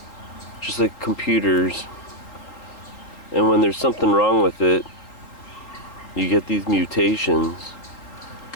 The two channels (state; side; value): late; right; 3.9 ms